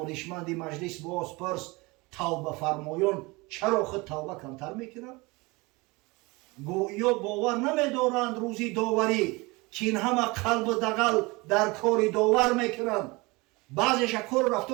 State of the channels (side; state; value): left; quieter; 24.6 dB